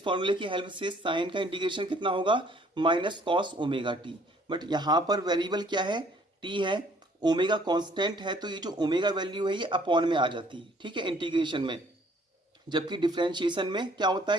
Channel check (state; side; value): normal; both; correlation 0.60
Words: फॉर्मूले की हेल्प से साइन का इंटीग्रेशन कितना होगा, minus cos omega T, but यहाँ पर वेरिएबल क्या है, टी है, ओमेगा कांस्टेंट है, तो ये जो ओमेगा वैल्यू है ये अपॉन में आ जाती है, ठीक है, इंटीग्रेशन में। जबकि डिफरेंशिएशन में क्या होता